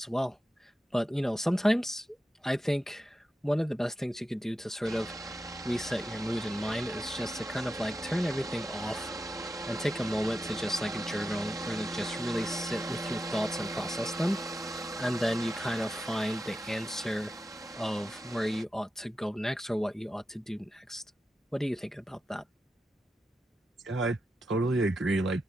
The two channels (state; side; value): normal; both; correlation 0.89